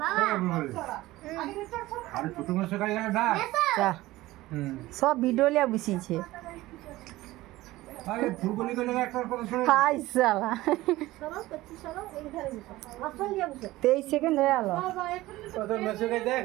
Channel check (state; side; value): quieter; left; 17.7 dB